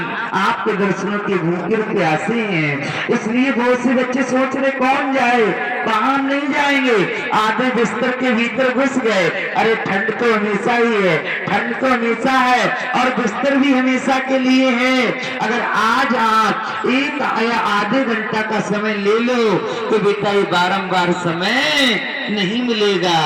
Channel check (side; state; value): both; identical; correlation 1.00